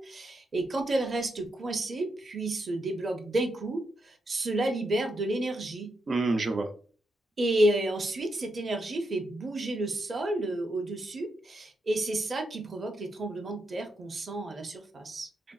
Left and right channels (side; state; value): both; normal; correlation 0.83